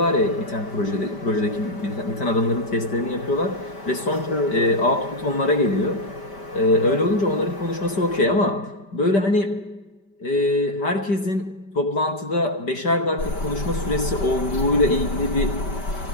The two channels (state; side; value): late; right; 5.1 ms